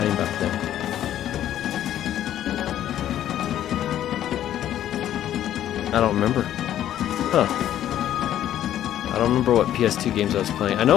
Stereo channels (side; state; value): right; quieter; 11.6 dB